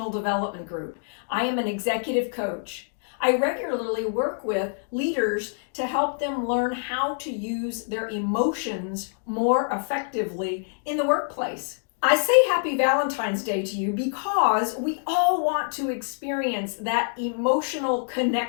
Development Group. I am an executive coach. I regularly work with leaders to help them learn how to use their emotions more effectively in the workplace. I say Happy Valentine's Day to you because we all want to experience that emotional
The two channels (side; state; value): right; silent; digital silence